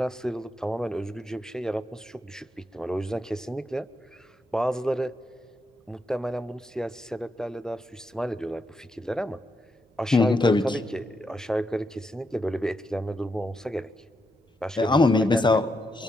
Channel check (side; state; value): both; normal; correlation 0.82